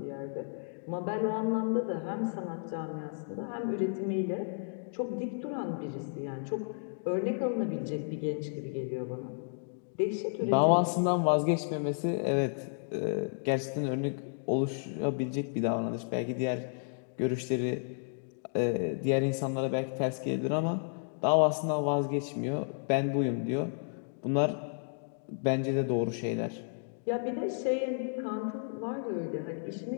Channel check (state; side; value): silent; right; digital silence